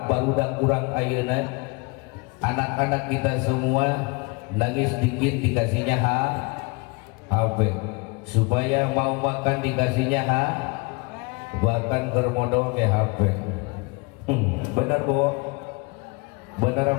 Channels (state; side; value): quieter; right; 28.4 dB